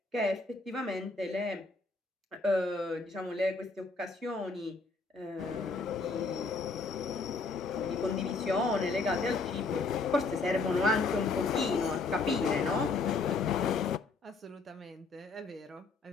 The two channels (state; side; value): quieter; right; 3.9 dB